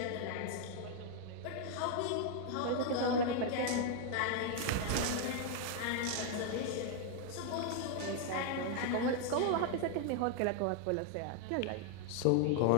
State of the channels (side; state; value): both; different; correlation 0.00